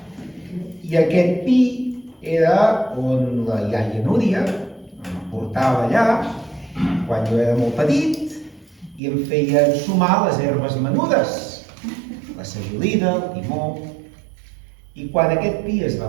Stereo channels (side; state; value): left; drops out; at 9.0 s